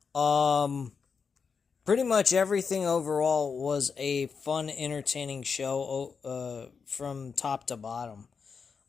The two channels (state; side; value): quieter; right; 5.7 dB